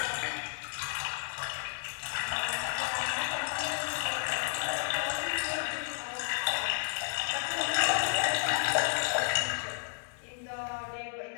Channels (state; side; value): silent; right; 56 dB below the other